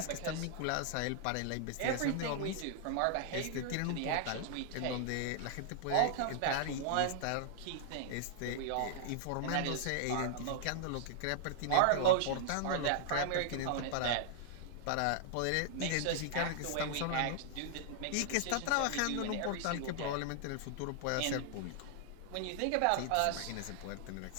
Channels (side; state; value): both; different; correlation -0.01